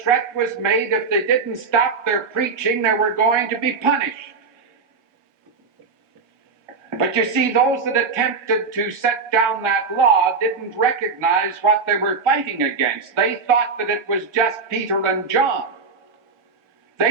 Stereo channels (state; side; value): quieter; left; 4.8 dB